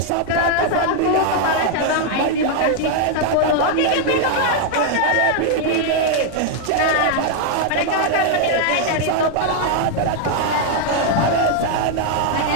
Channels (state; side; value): different; both; correlation 0.00